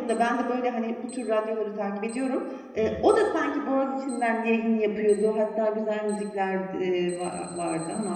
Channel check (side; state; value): both; identical; correlation 1.00